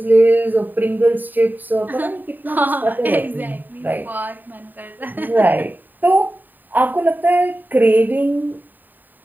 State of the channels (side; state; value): left; late; 0.089 ms